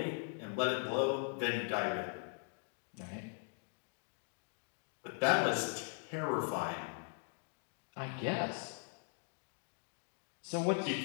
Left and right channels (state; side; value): silent; right; 51 dB below the other